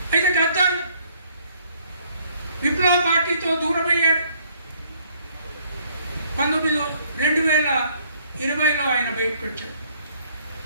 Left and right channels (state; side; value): inverted; both; correlation -0.64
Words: అయితే గద్దర్ విప్లవ పార్టీతో దూరమయ్యాడు. 2020లో ఆయన బయటకు వచ్చాడు.